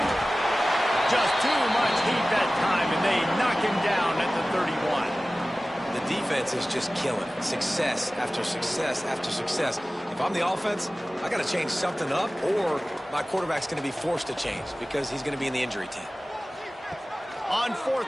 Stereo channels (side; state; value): both; normal; correlation 0.97